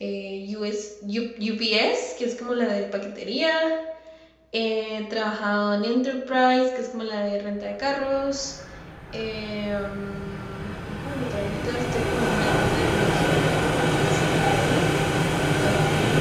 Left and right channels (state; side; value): identical; both; correlation 1.00